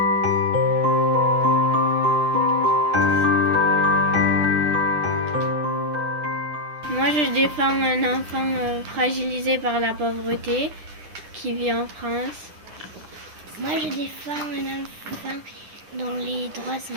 Moi, je défends un enfant fragilisé par la pauvreté qui vit en France. Moi, je défends un enfant dont les droits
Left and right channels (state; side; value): late; left; 10 ms